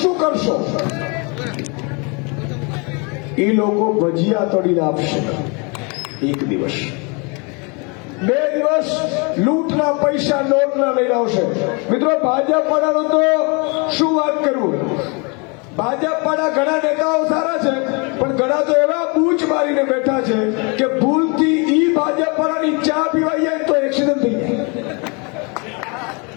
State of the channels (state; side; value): quieter; right; 31.9 dB